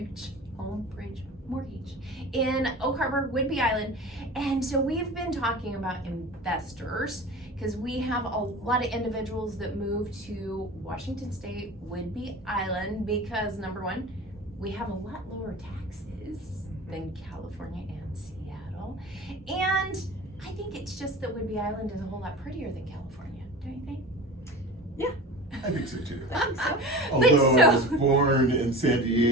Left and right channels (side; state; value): both; normal; correlation 0.35